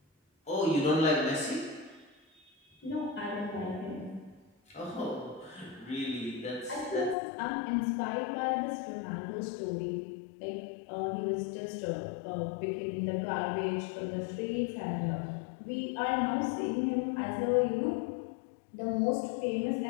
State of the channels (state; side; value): drops out; right; at 7.2 s